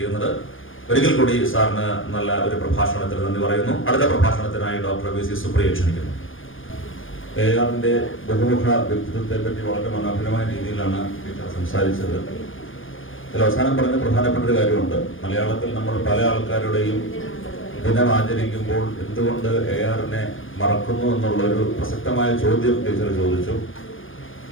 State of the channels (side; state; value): right; late; 0.58 ms